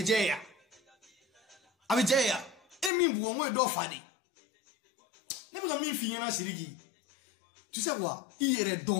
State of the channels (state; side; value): drops out; right; at 2.9 s